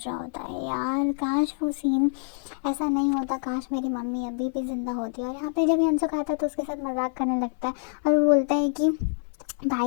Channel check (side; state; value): right; silent; 61 dB below the other